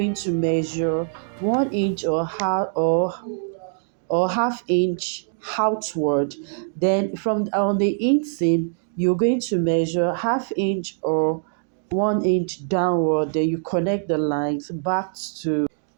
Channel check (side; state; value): left; silent; digital silence